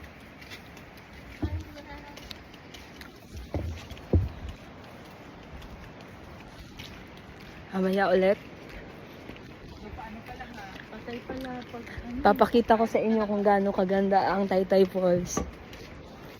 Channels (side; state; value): both; identical; correlation 1.00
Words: Hi vlog. Mamaya ulit. Patay pala pag Papakita ko sa inyo kung gaano kaganda ang Taytay Falls.